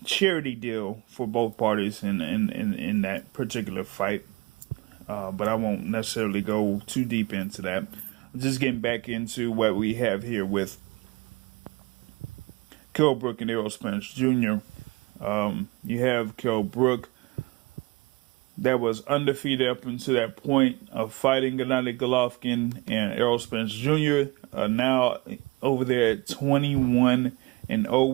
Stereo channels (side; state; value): left; quieter; 23.1 dB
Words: charity deal for both parties in that particular fight. But I won't necessarily go too deep into that. Just getting back into what we have here with Kell Brook and Errol Spence Jr. You have Kell Brook that was undefeated up until that point of fighting Gennady Golovkin, and Errol Spence Jr. Now over there at 21-0